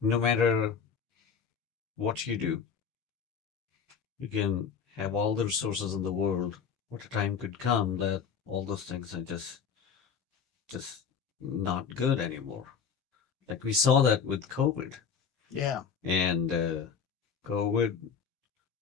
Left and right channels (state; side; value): quieter; right; 6.5 dB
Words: no matter what you do, you can have all the resources in the world. What a time could come that all those things are just not good anymore. Like we saw that with COVID, Yeah, and COVID